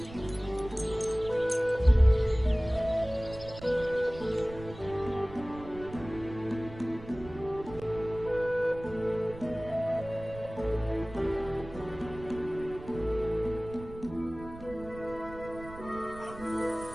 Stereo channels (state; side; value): noise; right; rumble, 15 dB below the sound